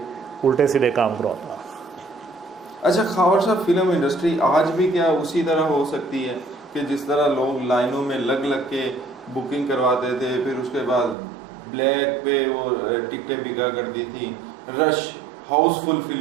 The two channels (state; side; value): drops out; left; at 11.2 s